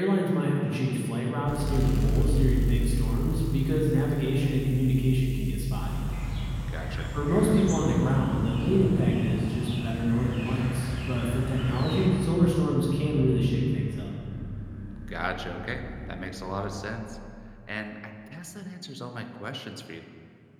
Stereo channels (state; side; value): identical; both; correlation 1.00